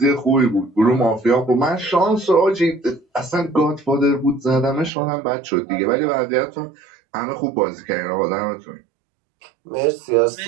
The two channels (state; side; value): drops out; left; at 4.9 s